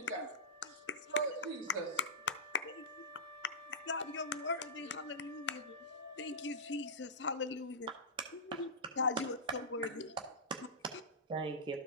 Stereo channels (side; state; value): both; normal; correlation -0.14